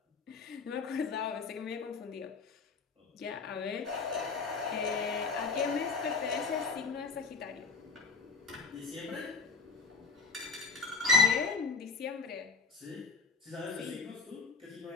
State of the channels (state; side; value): quieter; right; 4.5 dB